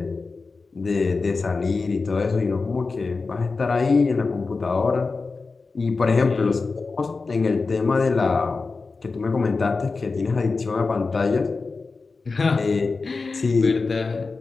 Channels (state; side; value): quieter; right; 4.1 dB